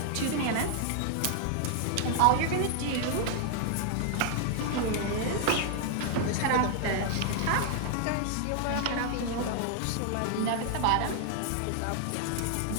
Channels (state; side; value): different; both; correlation 0.00